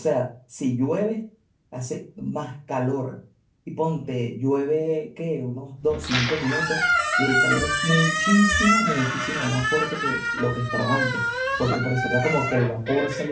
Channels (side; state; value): both; identical; correlation 1.00